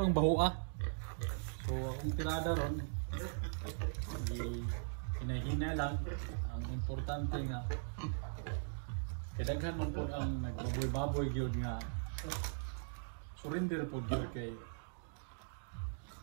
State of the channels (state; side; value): silent; left; digital silence